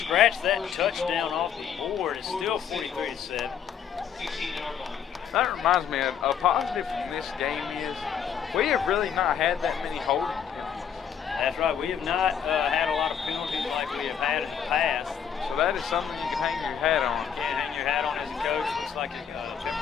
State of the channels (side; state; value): right; quieter; 8.0 dB